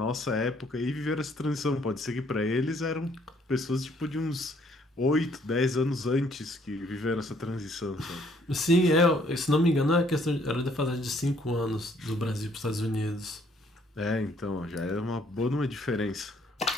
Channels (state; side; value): normal; both; correlation 0.65